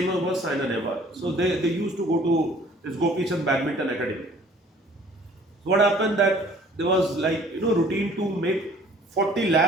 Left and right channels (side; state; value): both; normal; correlation 0.54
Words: was Saina Nehwal. So they used to go to this Gopi Chand Badminton Academy. So what happened that there was routine to make 40